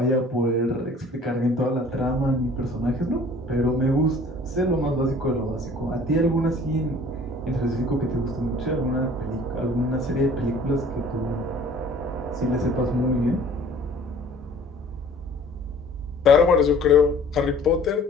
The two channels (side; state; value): both; normal; correlation 0.50